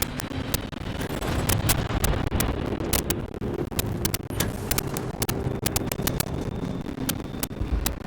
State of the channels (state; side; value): identical; both; correlation 1.00